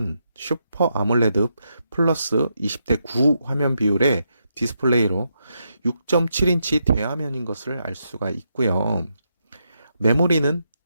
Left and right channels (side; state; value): both; inverted; correlation -0.82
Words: 슈퍼 아몰레드 플러스 20대 9 화면 비율의 디스플레이로 6.7인치 대화면인 것을 알 수가 있고요. 메모리는